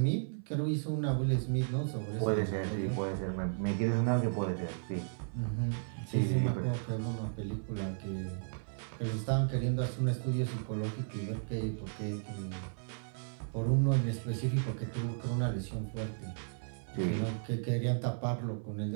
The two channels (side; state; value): left; silent; 55 dB below the other